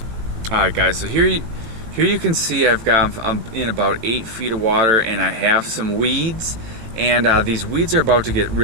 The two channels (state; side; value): late; left; 18 ms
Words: Alright guys, so here you can see I'm in about 8 feet of water, and I have some weeds, and these weeds are about to get